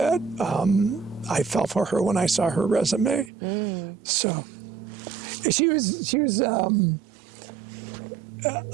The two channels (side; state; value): left; drops out; at 3.3 s